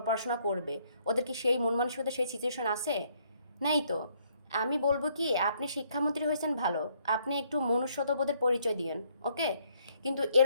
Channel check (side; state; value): both; inverted; correlation -0.68